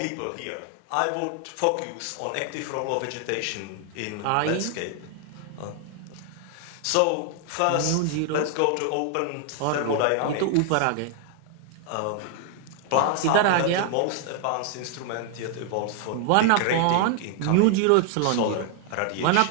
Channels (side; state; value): both; different; correlation 0.00